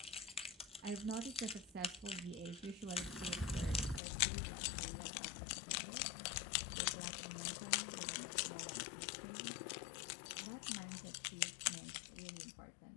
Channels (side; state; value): right; drops out; at 4.0 s